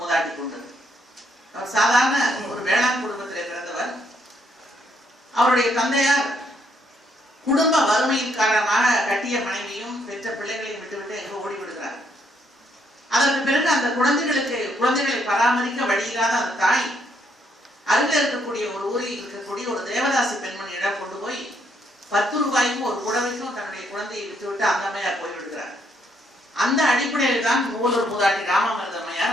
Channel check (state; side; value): normal; both; correlation 0.73